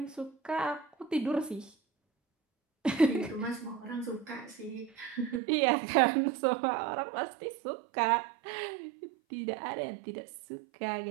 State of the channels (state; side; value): drops out; left; at 5.4 s